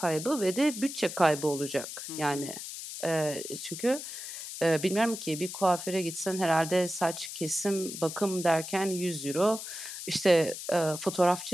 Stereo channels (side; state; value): left; noise; hiss, 9 dB below the sound